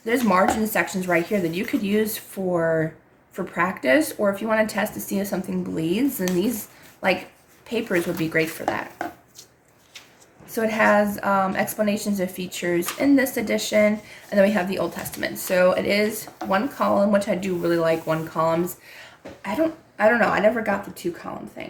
margin sections right here that you could use for practice, or if you want to test to see if something bleeds, then these like papers would be great for that. So it has explanations of features in this edition, and then we have the Old Testament. So it is one column, which I do really like one columns. I don't know. I never got the 2-column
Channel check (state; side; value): identical; both; correlation 1.00